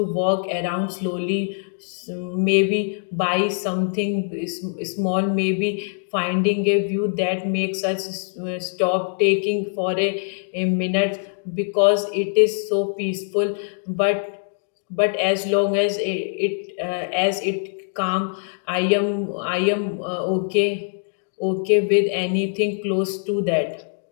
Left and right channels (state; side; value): silent; right; digital silence